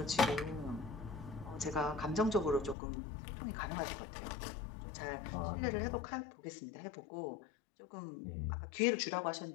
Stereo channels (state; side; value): drops out; right; at 2.8 s